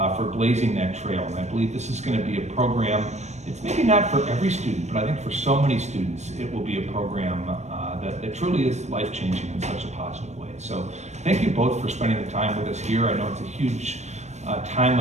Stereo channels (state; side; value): late; left; 0.33 ms